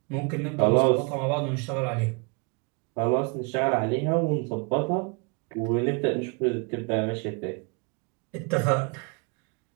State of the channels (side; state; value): left; quieter; 32.6 dB